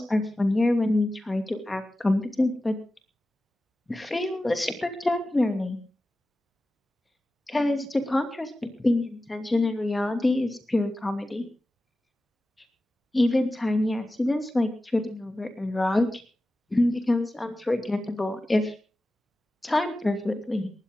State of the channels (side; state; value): both; normal; correlation 0.94